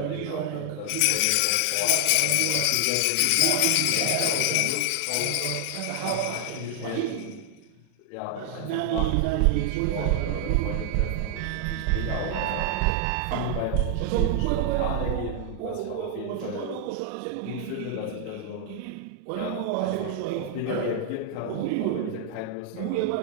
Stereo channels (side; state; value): both; different; correlation 0.00